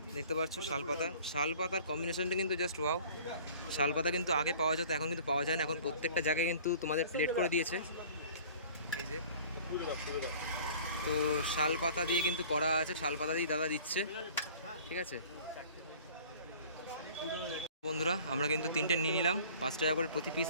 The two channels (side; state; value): both; inverted; correlation -0.47